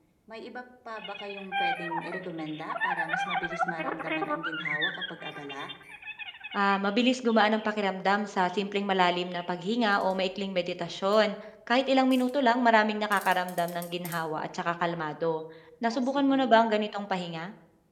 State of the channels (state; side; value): identical; both; correlation 1.00